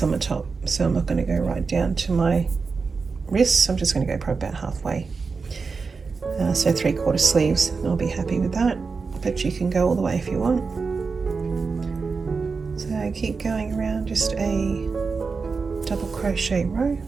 top. So I'm not going to go right down to my wrists. I'm just going to go probably about halfway. So 3/4 sleeves, I'll be happy with that. But you can go all the way if you want. So keep going around, just a double crochet row.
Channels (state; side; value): quieter; left; 4.8 dB